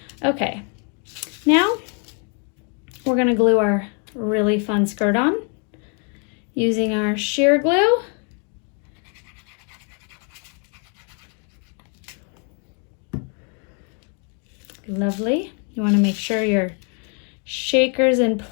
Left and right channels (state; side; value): quieter; right; 39.7 dB